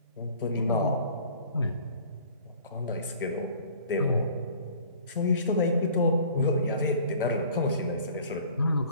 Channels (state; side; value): inverted; both; correlation -0.50